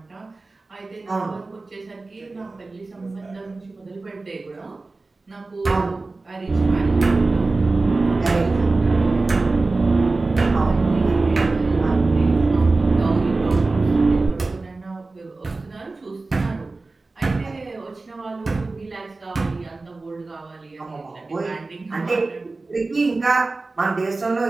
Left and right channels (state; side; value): quieter; left; 3.5 dB